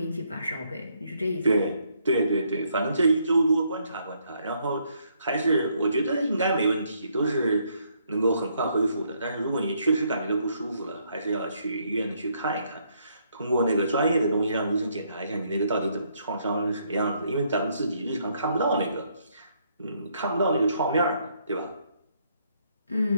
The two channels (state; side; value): inverted; both; correlation -0.72